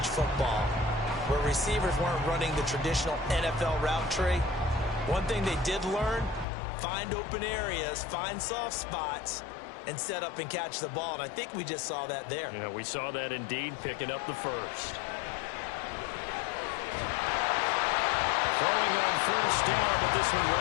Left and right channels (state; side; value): drops out; right; at 6.5 s